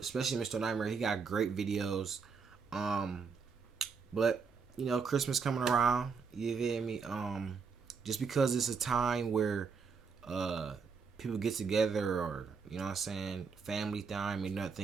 Mr. Nightmare. He got great videos. But Christmas coming around. You feel me? Just because it's a time where people get together, or family time, and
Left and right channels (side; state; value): left; quieter; 5.4 dB